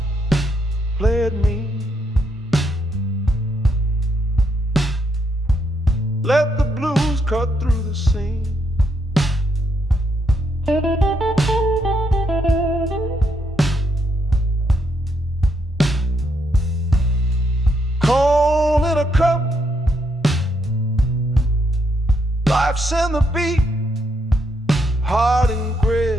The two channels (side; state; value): both; normal; correlation 0.77